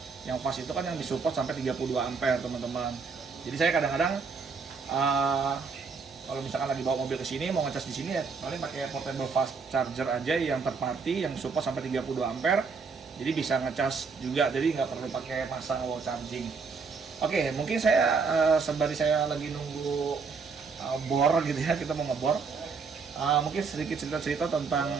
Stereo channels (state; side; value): quieter; left; 5.0 dB